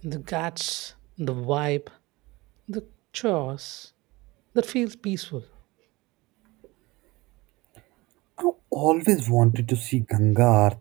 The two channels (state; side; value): quieter; left; 22.0 dB